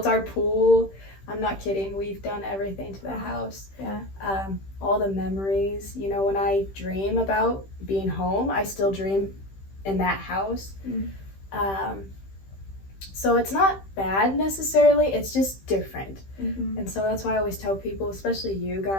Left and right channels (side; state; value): right; late; 15 ms